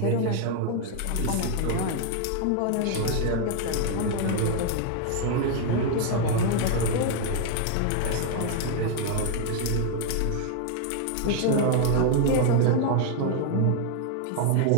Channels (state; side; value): different; both; correlation 0.00